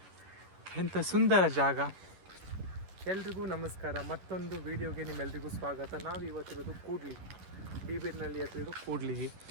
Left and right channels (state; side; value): late; left; 11 ms